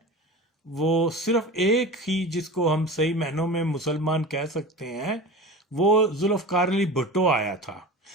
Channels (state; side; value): normal; both; correlation 0.33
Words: وہ صرف ایک ہی جس کو ہم صحیح معنوں میں مسلمان کہہ سکتے ہیں، وہ ذوالفقار علی بھٹو آیا تھا.